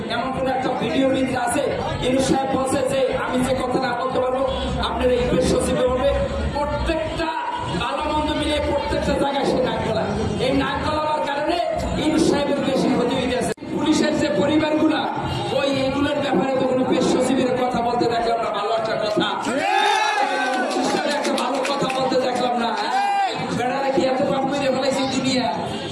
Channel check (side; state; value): both; identical; correlation 1.00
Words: এমন কোন একটা ভিডিও ভিতরে আছে ইউনূস সাহেব বলছে যে আমি যে কথা না বলতে পারবো আপনার এই পেশ সচিবে বলবে। প্রত্যেকটা ভালো মন্দ মিলে প্রত্যেকটা জায়গায় সে নাক গলা, এই নাক গলাবার কারণে ইউনূস সাহেবের বেশি ক্ষতি হয়ে গেছে। পুলিশের যে পরিবারগুলা ওই এগুলোর ব্যাপারে তো কোনো পেশ সচিবের কথা বলতে দেখলাম না, ভালো একটা কথা একটা ভালো কথা বলতে দেখলাম না। বেড়ারা কি এত পাপ করে ফেলাইছে দুনিয়া,